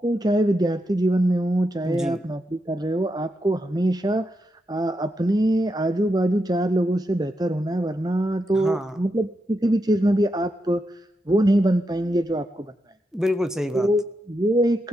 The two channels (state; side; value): normal; both; correlation 0.85